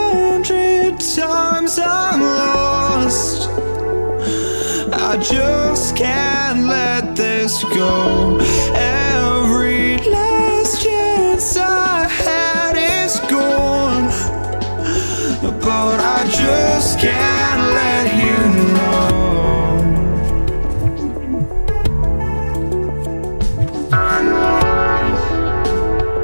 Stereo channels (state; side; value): inverted; both; correlation -1.00